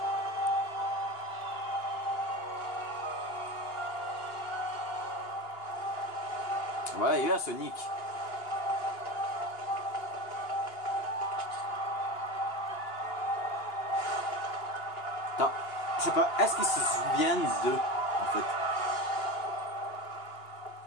Voilà, il est là, Sonic. Attends, je sais pas, est-ce qu'ils se souviennent d'eux, en fait?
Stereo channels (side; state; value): right; late; 2.8 ms